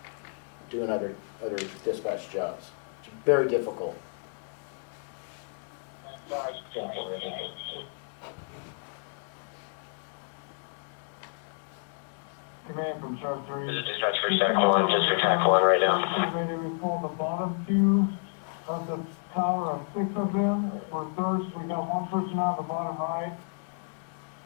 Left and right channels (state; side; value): silent; right; 58 dB below the other